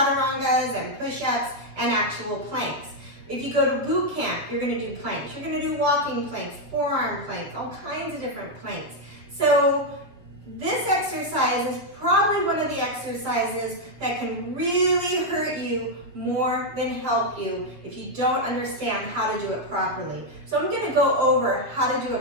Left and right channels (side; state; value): left; late; 7.6 ms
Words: and push-ups and actual planks. If you go to boot camp, you're going to do planks. You're going to do walking planks, forearm planks, all kinds of different planks. So this exercise is probably one of the exercises that can really hurt you more than help you if you don't understand how to do it properly. So I'm going to go over how to do a